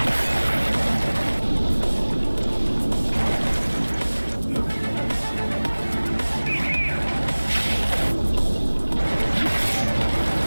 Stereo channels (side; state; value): both; inverted; correlation -1.00